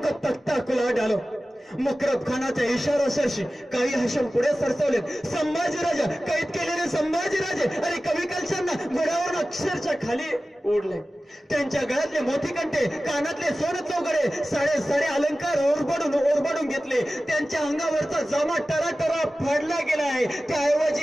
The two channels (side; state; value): both; normal; correlation 0.96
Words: को तख्ताकुला डालो. मुकरब खानाच्या इशाराशी काही हशम पुढे सरसवले. संभाजीराजा कैद केलेले संभाजीराजे आणि कविकलशांना घोड्यावरून अक्षरशः खाली ओढले. त्यांच्या गळ्यातले मोठी कंठे, कानातले सोने चौघडे, साडे अलंकार ओरबाडून घेतले. त्यांच्या अंगावरचा जामा टराटरा फाडला गेलाय.